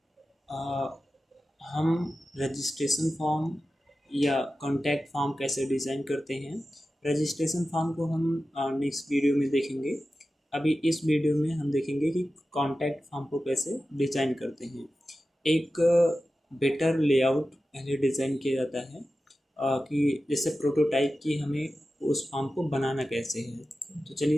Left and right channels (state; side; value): normal; both; correlation 0.94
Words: आ, हम रजिस्ट्रेशन फॉर्म या कॉन्टैक्ट फॉर्म कैसे डिज़ाइन करते हैं। रजिस्ट्रेशन फॉर्म को हम नेक्स्ट वीडियो में देखेंगे। अभी इस वीडियो में हम देखेंगे कि कॉन्टैक्ट फॉर्म को कैसे डिज़ाइन करते हैं। एक बेटर लेआउट पहले डिज़ाइन किया जाता है कि जैसे प्रोटोटाइप की हमें उस फॉर्म को बनाना कैसे है। तो